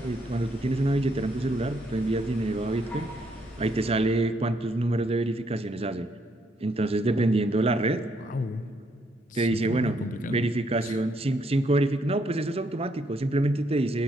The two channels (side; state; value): both; normal; correlation 0.73